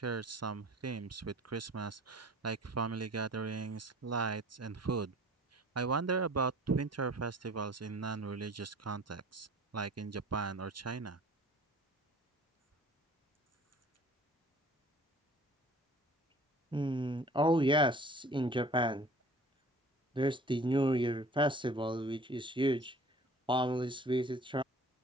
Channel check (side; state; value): both; normal; correlation 0.48